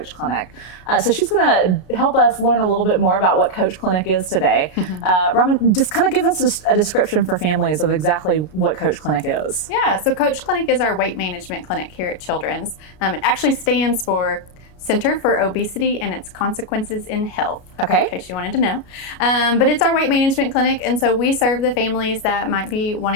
clinic. So she's going to help us learn a little bit more about what C.O.A.C.H clinic is today. Robin, just kind of give us a description for families of exactly what C.O.A.C.H clinic is. Yeah, so C.O.A.C.H clinic is our weight management clinic here at Children's. It actually stands for Center for Obesity and Its Consequences in Health. Okay. In case you wanted to know. But it's our weight management clinic, and so we serve the families that might be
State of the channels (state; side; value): late; right; 33 ms